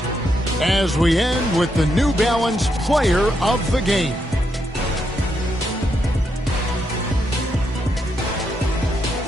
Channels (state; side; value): normal; both; correlation 0.80